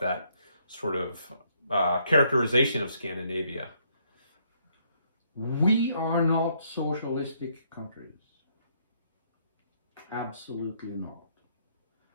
sort of characterization of Scandinavia. We are not socialistic countries. Absolutely not.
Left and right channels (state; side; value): inverted; both; correlation -0.70